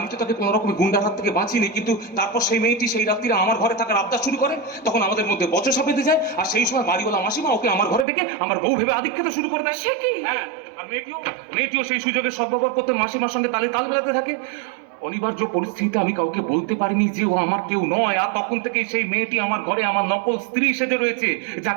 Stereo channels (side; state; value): left; drops out; at 8.1 s